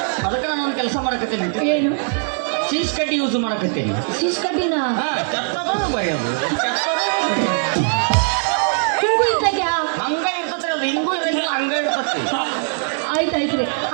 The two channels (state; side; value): silent; left; 66 dB below the other